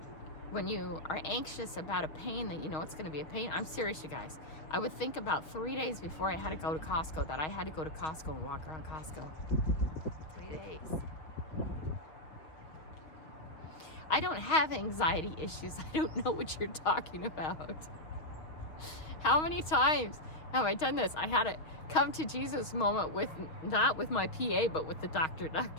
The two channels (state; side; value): late; right; 6.4 ms